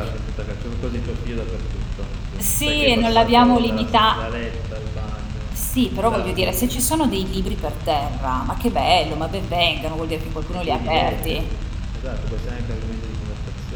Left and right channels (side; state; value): both; identical; correlation 1.00